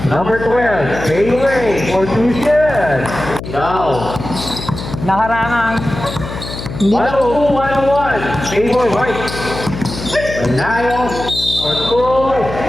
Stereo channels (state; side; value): noise; left; hum, 9 dB below the sound